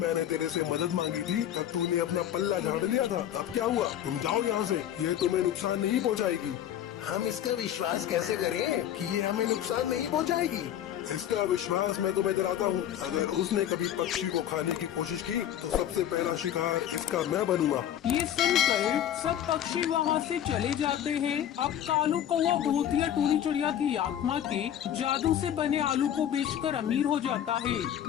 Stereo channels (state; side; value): quieter; right; 10.7 dB